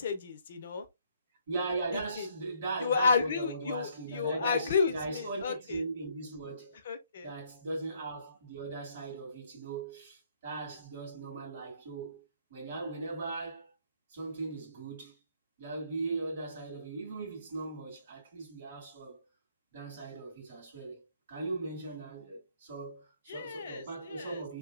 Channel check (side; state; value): both; inverted; correlation -0.67